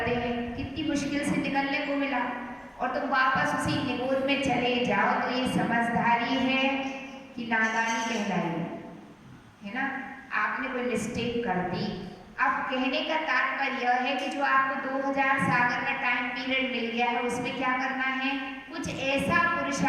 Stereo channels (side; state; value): both; identical; correlation 1.00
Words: हैं, कितनी मुश्किल से निकलने को मिला, और तुम वापस उसी निबोध में चले जाओ, तो ये समझदारी है कि नादानी कहलाई है ना। आपने कोई मिस्टेक कर दी। अब कहने का तात्पर्य यह है कि जो आपको 2000 सागर का टाइम पीरियड मिल गया है, उसमें क्या करना है? कुछ ऐसा